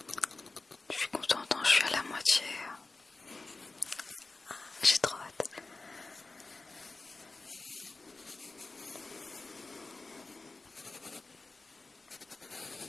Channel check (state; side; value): quieter; right; 3.5 dB